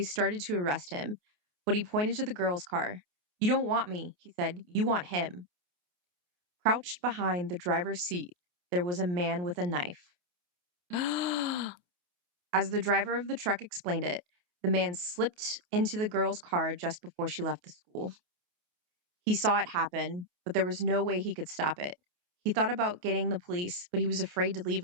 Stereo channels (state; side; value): late; left; 28 ms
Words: started to arrest him, but he pointed to the girl's car. You don't want me, he said. You want him. Crouched behind the driver's seat, there was a man with a knife. As the driver of the truck explained it, the man slipped into the girl's car just before she left the school. He saw it happen, but there was no way he could stop it. He thought about getting the police, but he was afraid to leave